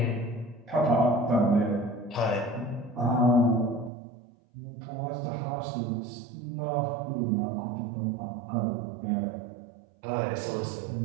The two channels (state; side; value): drops out; left; at 3.9 s